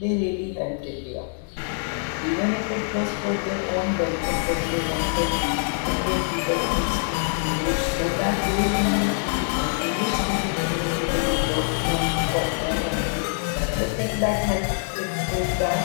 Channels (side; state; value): right; silent; 62 dB below the other